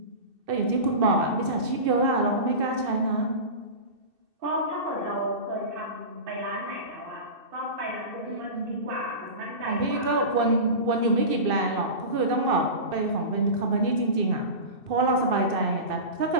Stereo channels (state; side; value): late; left; 2.6 ms